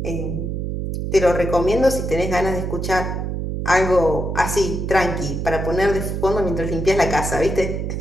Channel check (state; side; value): noise; right; hum, 3 dB below the sound